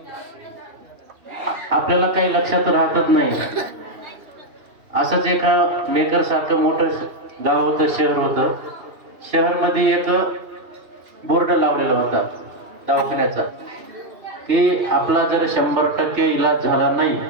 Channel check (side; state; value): left; late; 2.9 ms